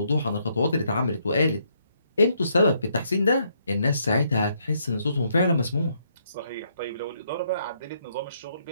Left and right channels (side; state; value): both; inverted; correlation -0.72